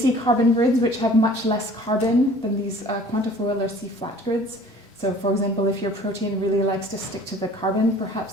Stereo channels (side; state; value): both; normal; correlation 0.49